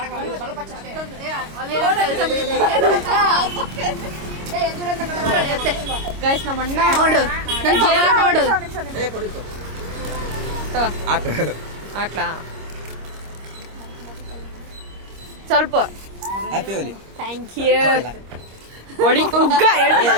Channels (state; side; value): late; left; 26 ms